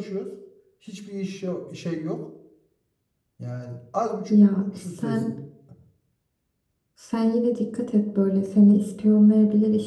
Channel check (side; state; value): both; identical; correlation 1.00